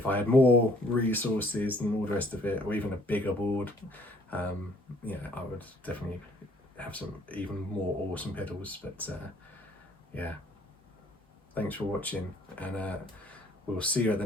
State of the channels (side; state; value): both; normal; correlation 0.60